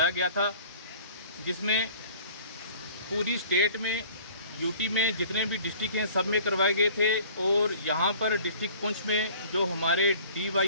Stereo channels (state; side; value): inverted; both; correlation -0.50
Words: गया था, जिसमें पूरी स्टेट में यूटी में जितने भी डिस्ट्रिक्ट हैं सब में करवाए गए थे। और यहाँ पर डिस्ट्रिक्ट पुंछ में जो हमारे